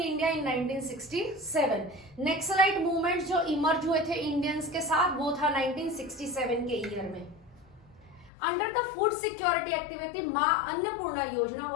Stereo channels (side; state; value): right; drops out; at 8.3 s